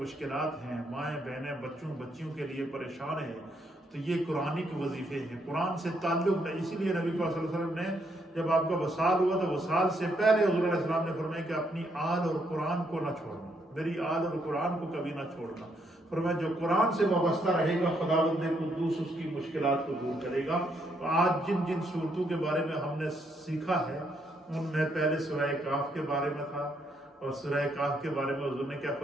ہیں، مائیں بہنیں بچیوں کے لیے پریشان ہیں. تو یہ قرآنی کے وظیفے ہیں، قرآن سے تعلق ہے. اسی لیے نبی پاک صلی اللہ علیہ وسلم نے جب آپ کا وصال ہوا تو وصال سے پہلے حضور علیہ السلام نے فرمایا کہ اپنی آل اور قرآن کو نہ چھوڑنا، میری آل اور قرآن کو کبھی نہ چھوڑنا. فرمایا جو قرآن سے وابستہ رہے گا خداوند قدوس اس کی مشکلات کو دور کرے گا. آج جن صورتوں کے بارے میں ہم نے سیکھا ہے ان میں پہلے سورہ کاف کے بارے میں تھا، اور سورہ کاف کے بارے میں حضور نے کیا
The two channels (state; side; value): normal; both; correlation 0.74